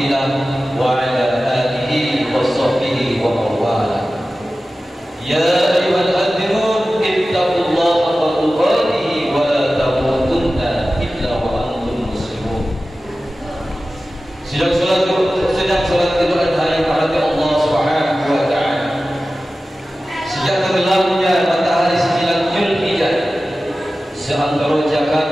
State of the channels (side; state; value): both; normal; correlation 0.95